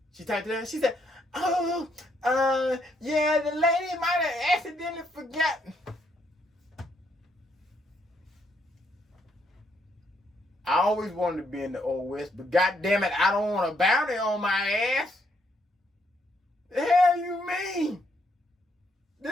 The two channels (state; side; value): normal; both; correlation 0.74